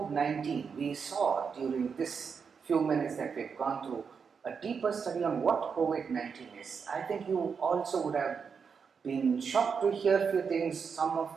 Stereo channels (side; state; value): left; quieter; 6.0 dB